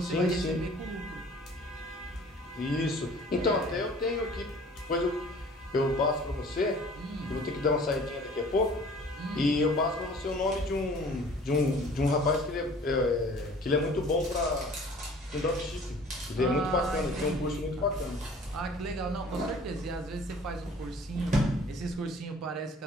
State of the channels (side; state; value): both; normal; correlation 0.49